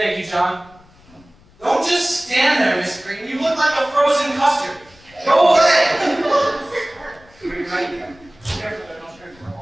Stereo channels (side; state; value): left; noise; rumble, 27 dB below the sound